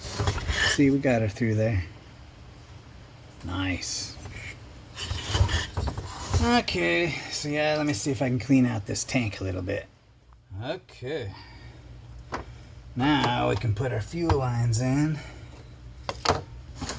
we got her through there. Nice. Okay, so yeah, let me see if I can clean out this tank a little bit. Okay. Now we can put our fuel lines in.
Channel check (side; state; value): both; identical; correlation 1.00